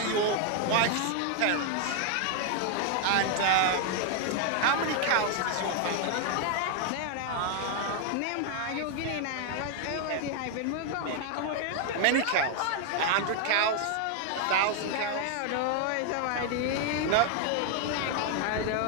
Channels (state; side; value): different; both; correlation 0.00